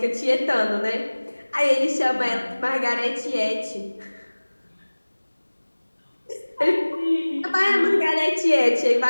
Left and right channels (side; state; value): both; inverted; correlation -1.00